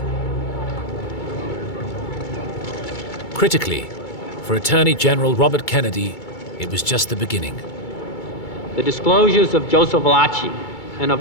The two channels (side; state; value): right; late; 2.3 ms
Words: Critically, for Attorney General Robert Kennedy, it was just the beginning. The disclosures of Joseph Valachi and